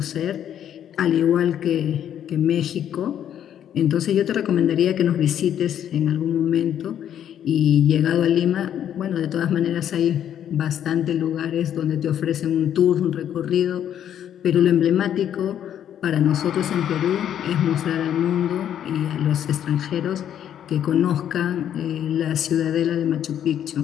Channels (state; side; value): quieter; right; 10.0 dB